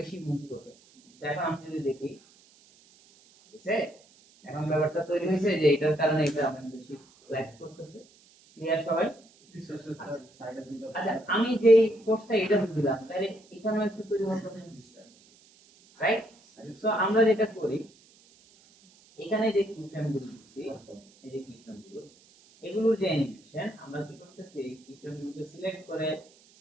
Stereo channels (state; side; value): noise; right; hiss, 28 dB below the sound